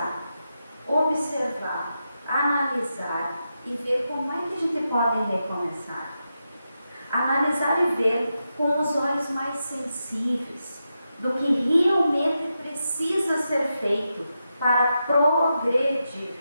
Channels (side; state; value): both; inverted; correlation -0.87